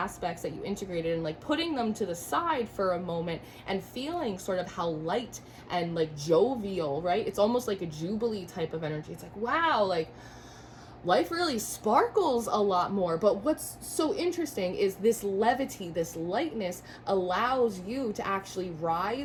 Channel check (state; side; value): identical; both; correlation 1.00